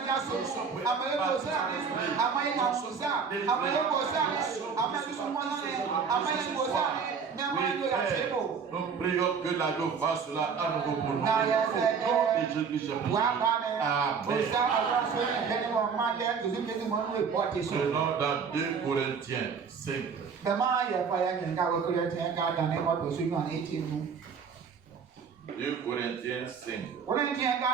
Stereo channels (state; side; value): quieter; left; 6.0 dB